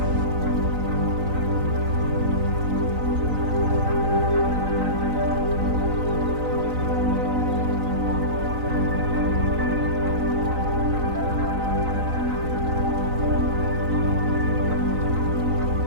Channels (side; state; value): left; late; 3.9 ms